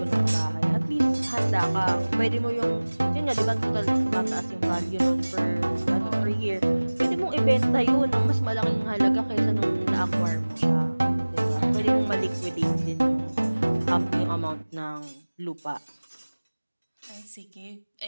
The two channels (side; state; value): both; inverted; correlation -1.00